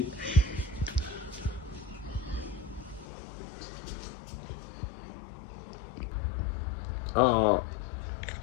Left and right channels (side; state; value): right; drops out; at 3.1 s